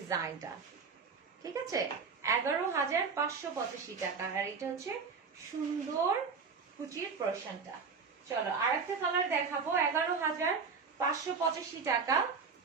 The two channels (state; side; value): quieter; left; 5.3 dB